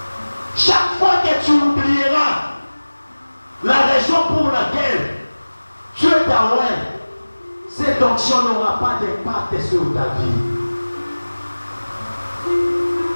Chaque fois que tu oublieras la raison pour laquelle Dieu t'a oint, cette onction n'aura pas d'impact sur ta vie.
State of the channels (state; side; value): inverted; both; correlation -1.00